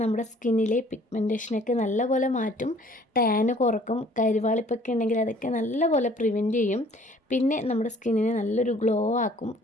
നമ്മുടെ സ്കിന്നിലെ പിഗ്മെൻറ്റേഷനൊക്കെ നല്ലപോലെ മാറ്റും, ടാന് കുറക്കും, കരിവാളിപ്പൊക്കെ ഉണ്ടെങ്കിൽ അതൊക്കെ നല്ലപോലെ പ്രിവെൻറ്റ് ചെയ്യും. പിന്നെ നമ്മുടെ സ്കിന്നിനെ നല്ലൊരു ഗ്ലോ ആക്കും,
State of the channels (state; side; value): normal; both; correlation 0.56